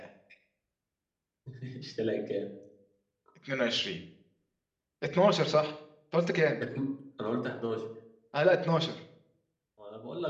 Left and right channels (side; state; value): both; identical; correlation 1.00